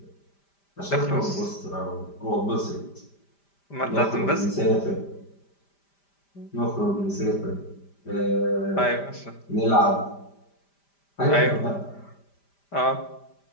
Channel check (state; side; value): late; right; 5.1 ms